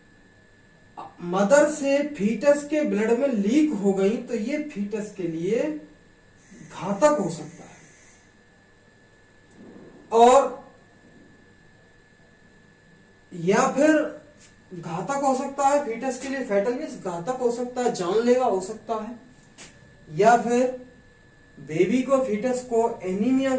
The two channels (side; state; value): both; identical; correlation 1.00